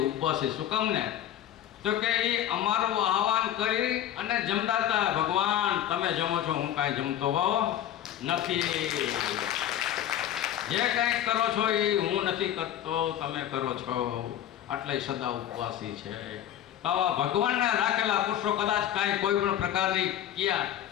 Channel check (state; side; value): quieter; right; 11.3 dB